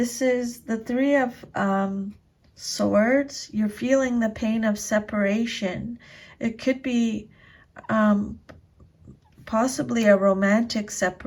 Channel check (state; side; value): identical; both; correlation 1.00